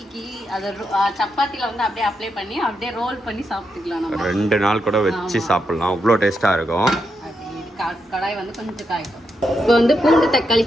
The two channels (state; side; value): normal; both; correlation 0.83